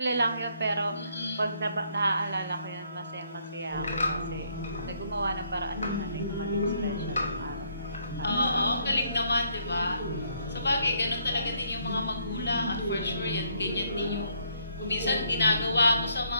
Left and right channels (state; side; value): inverted; both; correlation -0.69